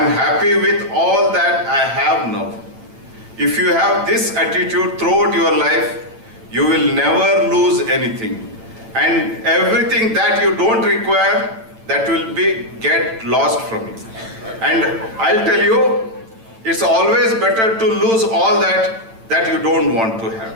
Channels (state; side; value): late; left; 8.9 ms